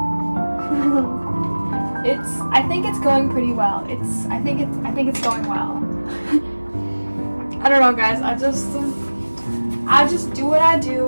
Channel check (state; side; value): inverted; both; correlation -1.00